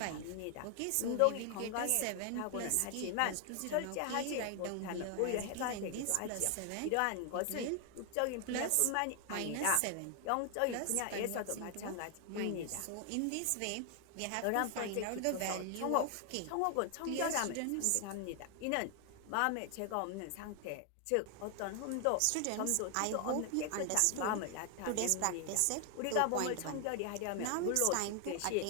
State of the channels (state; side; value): different; both; correlation 0.00